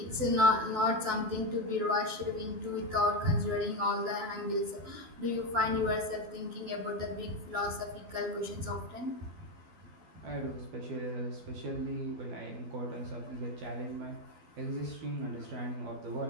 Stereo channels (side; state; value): left; late; 12 ms